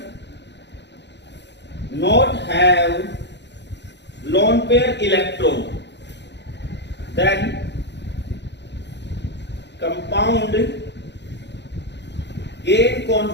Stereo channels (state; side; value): late; right; 0.51 ms